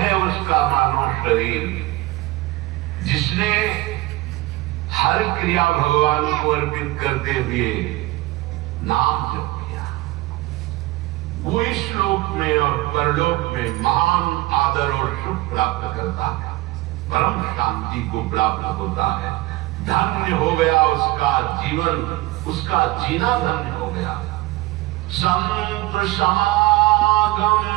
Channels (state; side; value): quieter; left; 19.3 dB